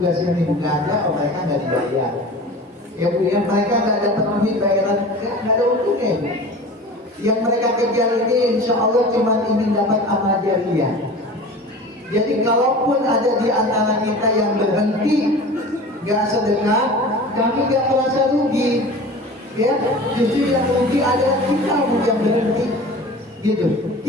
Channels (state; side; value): normal; both; correlation 0.38